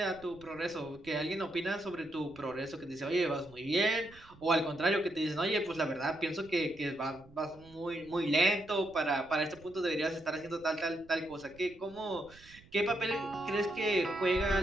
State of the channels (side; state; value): right; noise; rumble, 24 dB below the sound